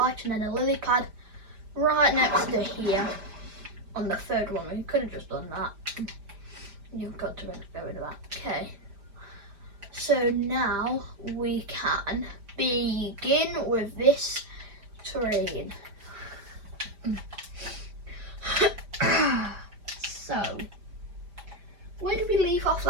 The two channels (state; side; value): late; left; 5.0 ms